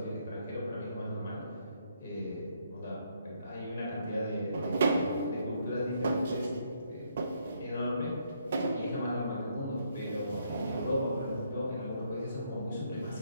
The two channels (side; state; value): both; inverted; correlation -0.72